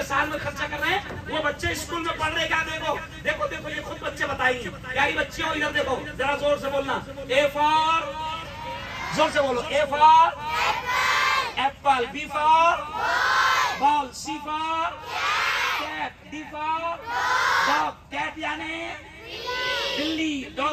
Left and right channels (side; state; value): both; identical; correlation 1.00